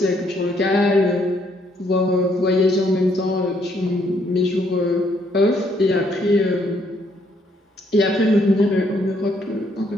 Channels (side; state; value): both; normal; correlation 0.70